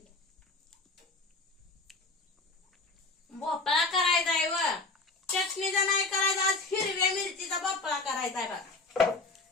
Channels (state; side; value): quieter; right; 3.5 dB